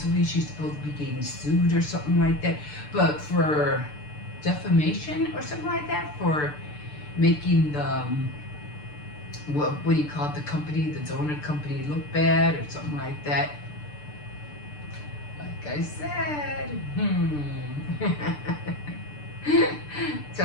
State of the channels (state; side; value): late; right; 6.8 ms